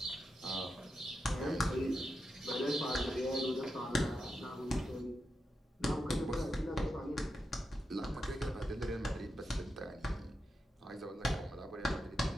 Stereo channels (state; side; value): normal; both; correlation 0.87